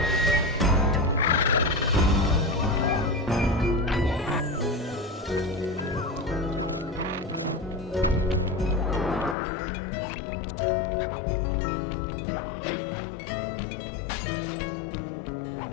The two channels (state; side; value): drops out; right; at 9.3 s